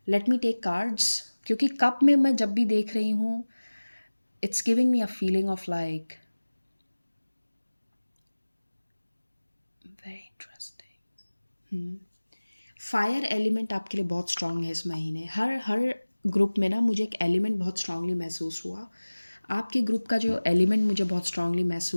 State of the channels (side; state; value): both; inverted; correlation -1.00